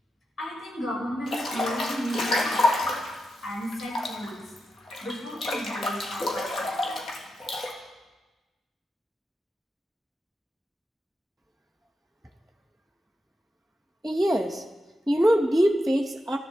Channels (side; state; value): both; normal; correlation 0.88